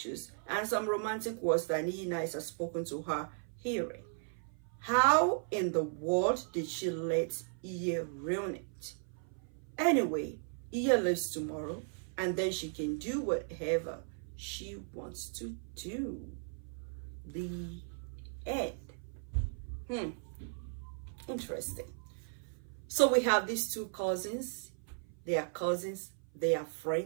and some romantic words that 𝐸𝐤 has spoken to her hearing. How in the world did she let 𝐸𝐤 ruin it? Anyway, 𝐸𝐤 lives tomorrow and then she can do whatever she wants to do. The end. Interesting. So we have these two cousins. They are cousins. They are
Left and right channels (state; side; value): silent; left; 54 dB below the other